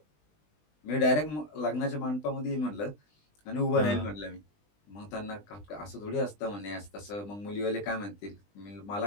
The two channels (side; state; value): right; late; 20 ms